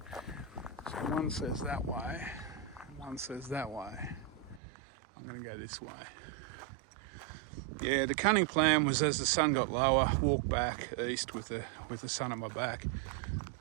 So one says that way, and one says that way. I'm going to go this way. Yeah, the cunning plan was as the sun got lower, walk back east with the sun at my back.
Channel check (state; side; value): drops out; left; at 4.6 s